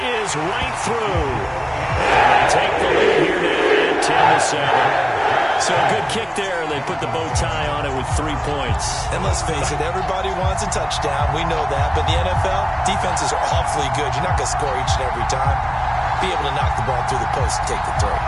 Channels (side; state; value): both; identical; correlation 1.00